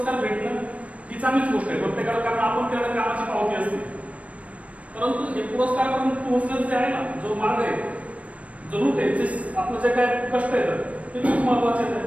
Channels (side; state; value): left; late; 0.065 ms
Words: भेटणं ही चांगलीच गोष्ट आहे प्रत्येकाला, कारण आपण त्याला कामाची पावती असते. परंतु हे पुरस्कारापर्यंत पोहोचण्याचं जे आहे ना, जो मार्ग आहे, जो रूट आहे, जे आपलं जे काय कष्ट येतं ते खूप महत्वाचे